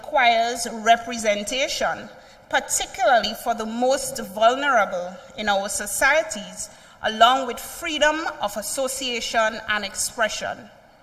representation, particularly for the most vulnerable in our societies, along with freedom of association and expression.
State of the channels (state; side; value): identical; both; correlation 1.00